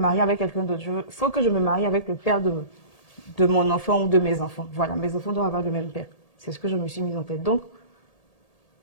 avec quelqu'un d'autre. Il faut que je me marie avec le père de mon enfant ou de mes enfants. Voilà, mes enfants doivent avoir le même père. C'est ce que je me suis mise en tête. Donc,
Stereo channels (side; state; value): right; late; 1.8 ms